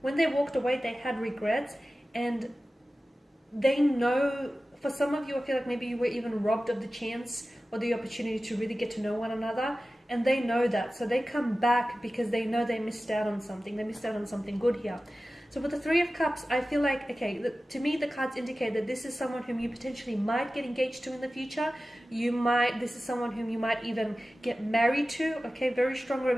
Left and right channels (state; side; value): normal; both; correlation 0.95